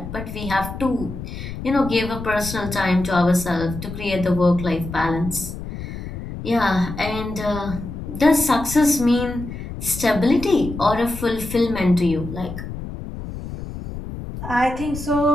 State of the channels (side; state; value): left; noise; rumble, 9 dB below the sound